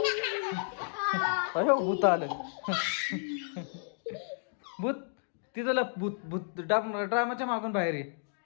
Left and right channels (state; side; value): silent; right; digital silence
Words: अयो भूत आलं. भूत तिथं लप. भूत भूत ड्रामाच्या मागून बाहेर ये.